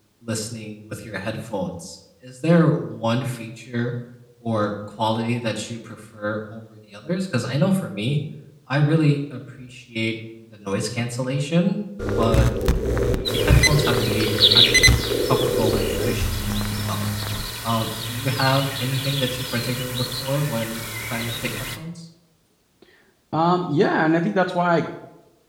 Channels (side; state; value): both; identical; correlation 1.00